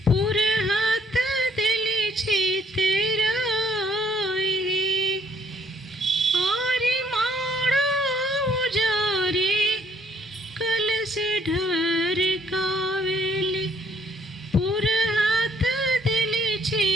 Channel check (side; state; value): both; normal; correlation 0.65